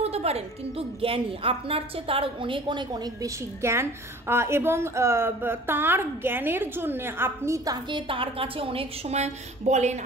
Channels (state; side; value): normal; both; correlation 0.46